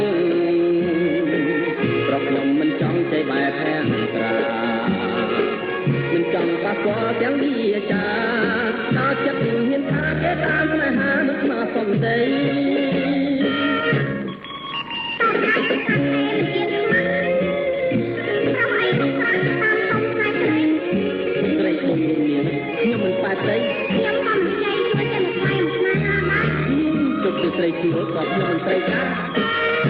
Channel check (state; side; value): identical; both; correlation 1.00